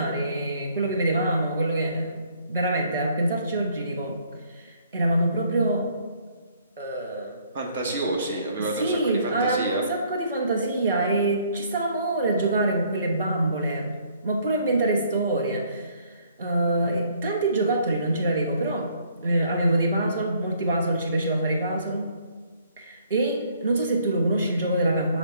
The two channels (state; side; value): inverted; both; correlation -0.64